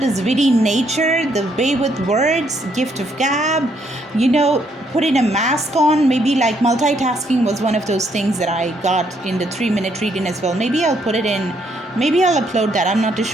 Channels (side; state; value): both; normal; correlation 0.72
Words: this witty nature, the way with words, gift of gab, you know, putting a mask on. Maybe like multitasking was one of those things that I got in the 3-minute reading as well. Maybe I'll put it in. Maybe I'll upload that. I'm not too